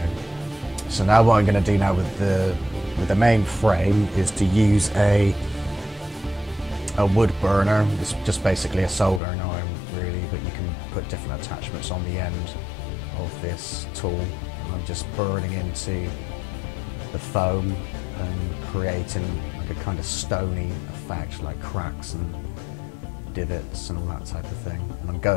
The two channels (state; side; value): drops out; right; at 9.2 s